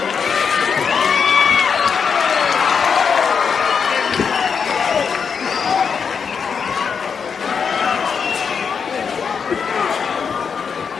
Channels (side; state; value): right; quieter; 6.3 dB